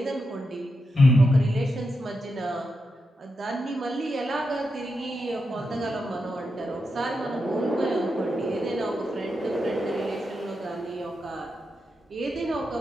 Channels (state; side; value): normal; both; correlation 0.86